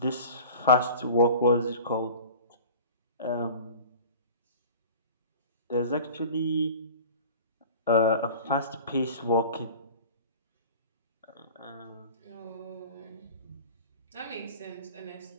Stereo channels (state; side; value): inverted; both; correlation -0.40